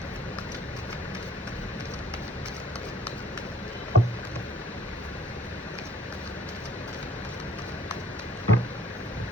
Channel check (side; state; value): both; normal; correlation 0.57